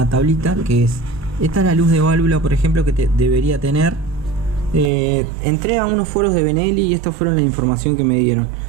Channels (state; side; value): drops out; left; at 4.9 s